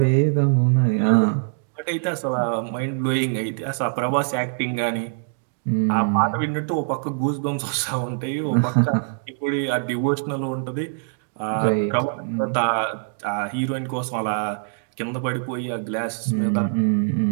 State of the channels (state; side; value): silent; left; digital silence